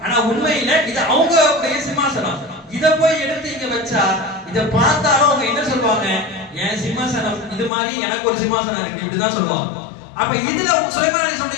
ஆனா உண்மையில இது அவங்களுடைய சிம்மாசனம். இத போய் எடுத்து இங்க வச்சா இத பார்த்தாலும் அவங்க என்ன சொல்லுவாங்க, என் சிம்மாசனம் இது மாதிரி எனக்கு ஒரு சிம்மாசனம் இருக்கு இப்படிதான் சொல்லுவாங்க. அப்ப இதுல சுலைமான்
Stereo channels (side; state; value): right; drops out; at 7.7 s